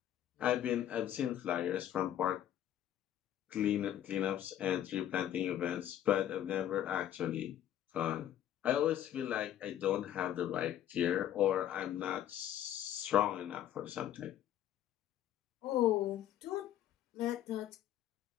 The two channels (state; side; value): quieter; right; 11.4 dB